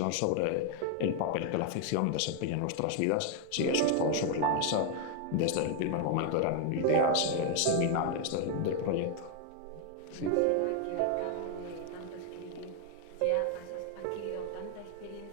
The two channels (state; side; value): different; both; correlation 0.00